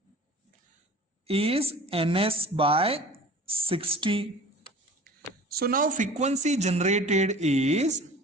is Ns by 60. So now frequency generated is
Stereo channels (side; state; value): both; normal; correlation 0.42